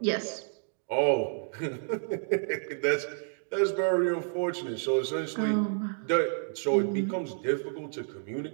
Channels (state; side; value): silent; left; digital silence